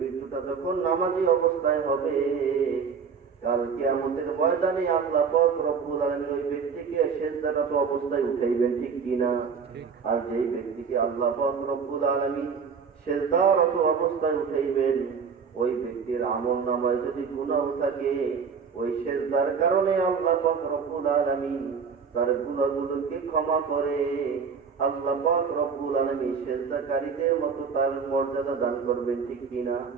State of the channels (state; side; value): quieter; left; 6.0 dB